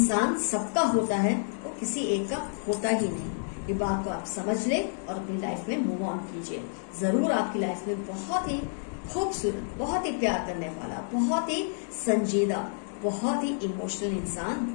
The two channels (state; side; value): silent; right; digital silence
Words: सबका होता है वो किसी एक का होता ही नहीं। ये बात को आप समझ ले और अपनी लाइफ में मूव ऑन कीजिए। जरूर आपकी लाइफ में बहुत ही खूबसूरत, बहुत ही प्यार करने वाला, बहुत ही संजीदा, बहुत ही इमोशनल